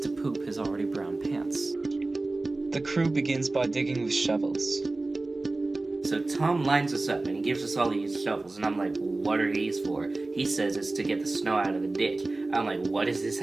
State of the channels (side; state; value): left; quieter; 3.2 dB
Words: poop his already brown pants. The crew begins by digging with shovels. So Tom lines us up and he gives us all these shovels and I'm like, what are these for? He says it's to get the snow out of the ditch. I'm like, what does this